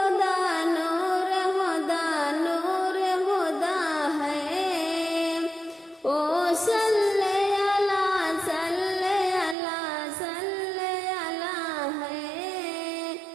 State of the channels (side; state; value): left; drops out; at 9.6 s